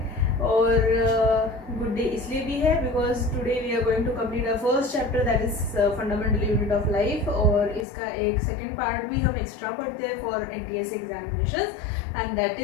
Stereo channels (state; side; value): drops out; right; at 7.9 s